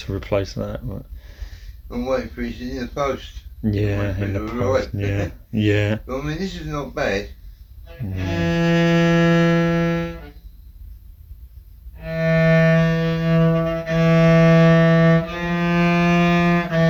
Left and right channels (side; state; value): both; identical; correlation 1.00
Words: replace that. But I'm waiting for it in the post. yeah, in the post. Yeah, yeah. But I mean, this is not bad.